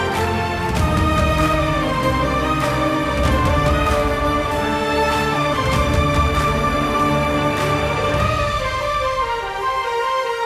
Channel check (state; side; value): identical; both; correlation 1.00